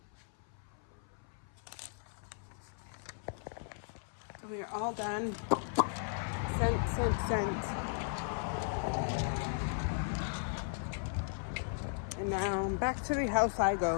So we are all done. Sent. And now back to the house I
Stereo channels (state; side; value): silent; right; 53 dB below the other